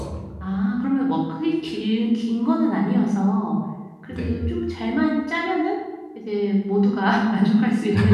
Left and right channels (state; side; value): identical; both; correlation 1.00